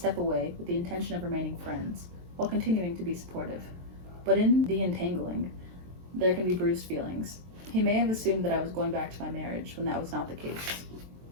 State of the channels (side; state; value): left; late; 23 ms